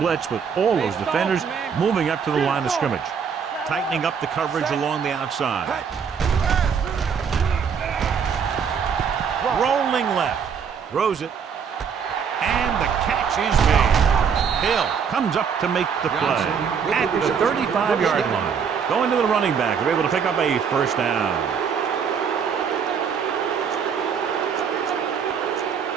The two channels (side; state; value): left; quieter; 6.8 dB